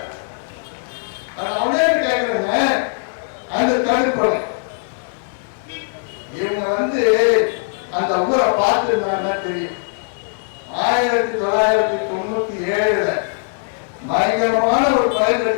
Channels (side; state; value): right; silent; 59 dB below the other